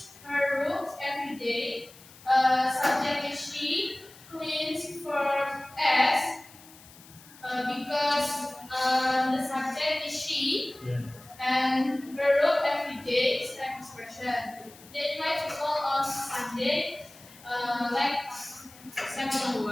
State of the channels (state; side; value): noise; left; hiss, 22 dB below the sound